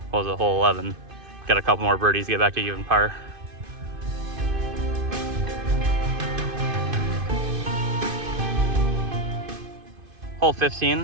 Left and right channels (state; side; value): late; left; 2.5 ms